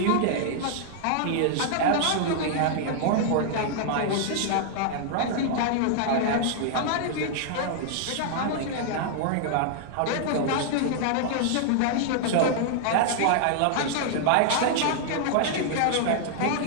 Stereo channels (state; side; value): different; both; correlation -0.01